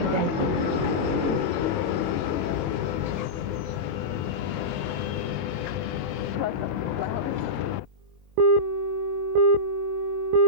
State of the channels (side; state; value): left; late; 22 ms